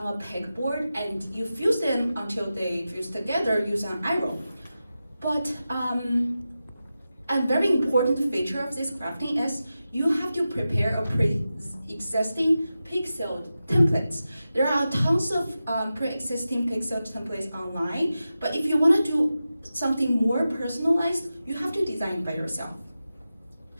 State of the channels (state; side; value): inverted; both; correlation -0.93